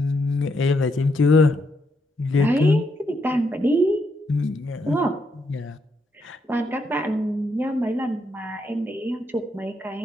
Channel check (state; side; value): normal; both; correlation 0.78